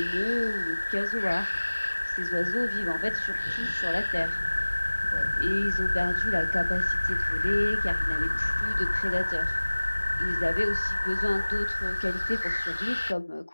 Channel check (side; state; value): both; inverted; correlation -1.00